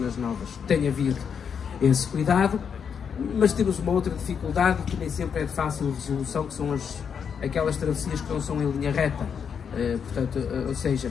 novas tem havido esse cuidado. Mas temos uma outra dificuldade que nem sempre é de fácil resolução, que são aquelas travessias que não são em linha reta. Portanto, ou seja,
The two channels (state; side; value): quieter; right; 7.0 dB